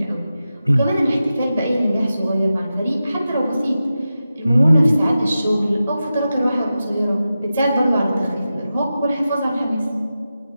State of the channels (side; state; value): both; inverted; correlation -0.92